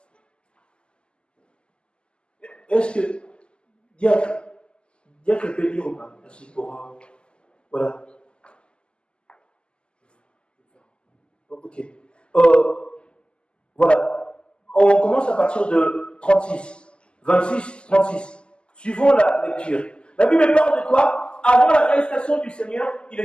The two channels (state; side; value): late; right; 0.050 ms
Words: Est-ce que Diacre peut lire ou pas? Merci pour... voilà. Ok. Voilà. On commence à partir de 36. 26, 36. Suivons la lecture. La Bible parle de quoi? Avant l'arrestation du Seigneur, il